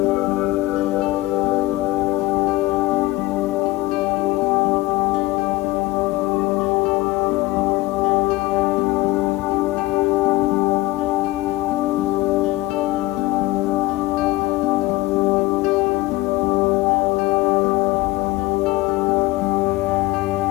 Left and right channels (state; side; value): quieter; right; 18.9 dB